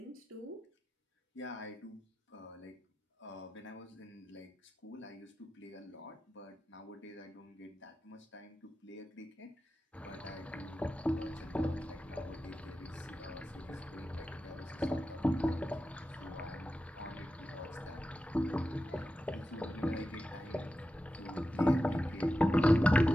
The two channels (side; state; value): both; normal; correlation 0.92